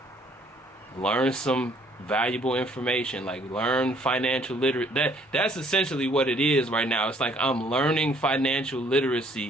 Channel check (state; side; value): normal; both; correlation 0.62